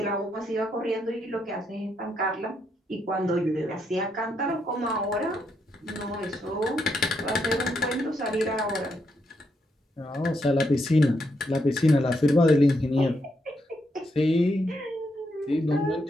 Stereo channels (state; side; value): normal; both; correlation 0.79